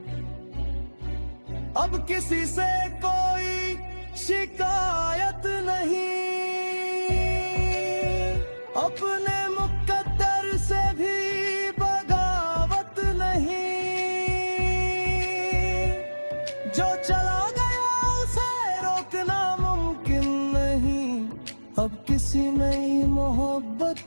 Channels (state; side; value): inverted; both; correlation -1.00